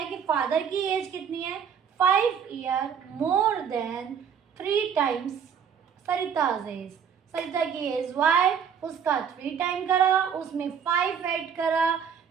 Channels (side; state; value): left; quieter; 7.5 dB